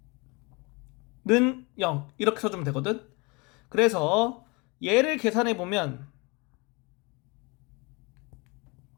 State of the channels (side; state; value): right; quieter; 28.1 dB